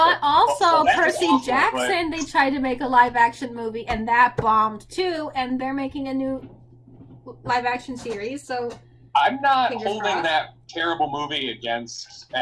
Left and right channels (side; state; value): both; identical; correlation 1.00